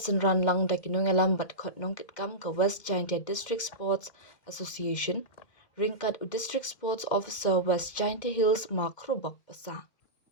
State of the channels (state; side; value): late; right; 2.1 ms